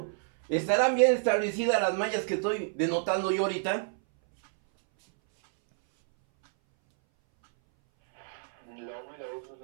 ¿Estarán bien establecidas las mallas que estoy denotando yo ahorita?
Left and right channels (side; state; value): left; silent; 59 dB below the other